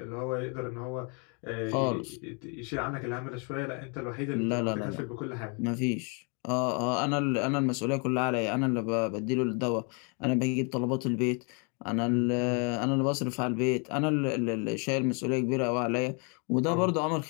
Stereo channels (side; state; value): right; quieter; 36.1 dB